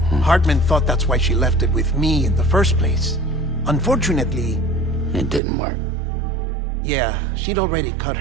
Hartman thought that's why she left it with me in the first place. Unfortunately... It didn't work. Yeah, she'd already cut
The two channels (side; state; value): left; drops out; at 5.4 s